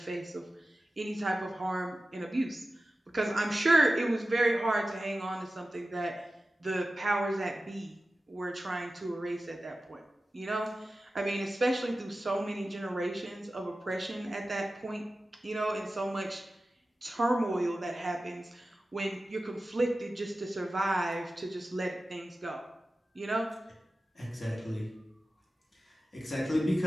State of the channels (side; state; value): both; normal; correlation 0.95